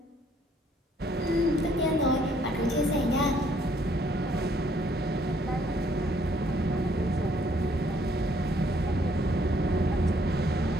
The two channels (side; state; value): both; normal; correlation 0.66